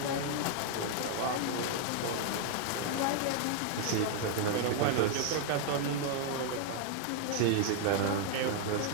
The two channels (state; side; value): different; both; correlation 0.00